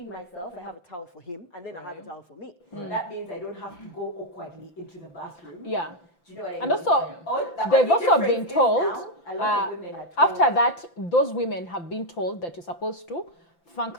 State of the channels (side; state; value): right; late; 5.9 ms